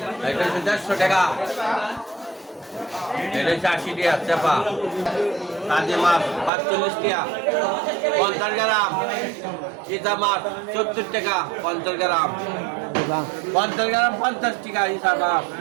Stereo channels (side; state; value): left; drops out; at 6.5 s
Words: এটা হচ্ছে 150 টাকা, এটা হচ্ছে 80 টাকা চাপা। কাজী মাছ 45 টাকা 50 গ্রাম, চিতা মাছ 70 টাকা 50 গ্রাম, 50 গ্রাম 50 টাকা হিসাব মাছ।